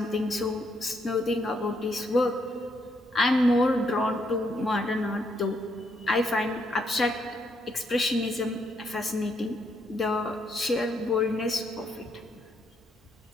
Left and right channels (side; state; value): both; normal; correlation 0.75